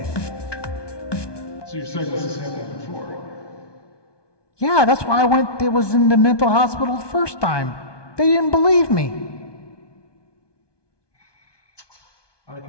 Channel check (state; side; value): late; right; 1.2 ms